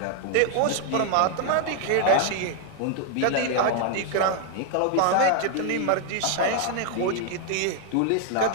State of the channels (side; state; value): both; different; correlation 0.00